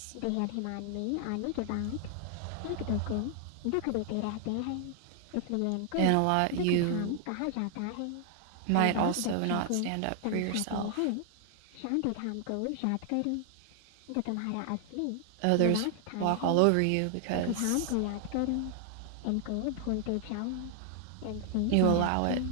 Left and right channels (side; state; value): both; different; correlation 0.00